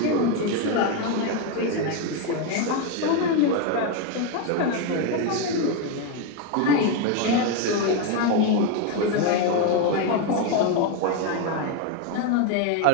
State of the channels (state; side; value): different; both; correlation 0.02